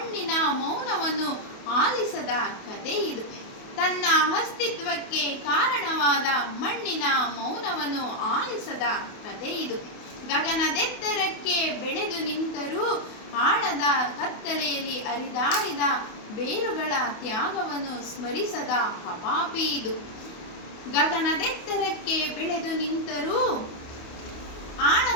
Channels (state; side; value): late; right; 28 ms